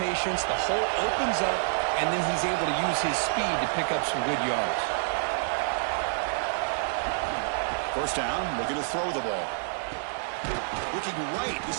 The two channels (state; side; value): silent; left; 59 dB below the other